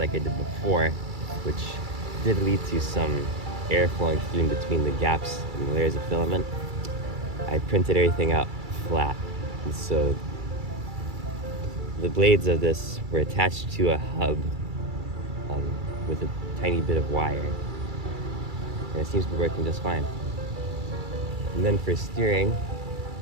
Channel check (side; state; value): left; late; 2.3 ms